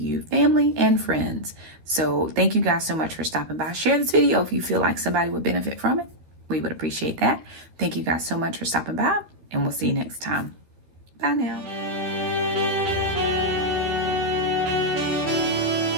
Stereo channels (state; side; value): late; left; 12 ms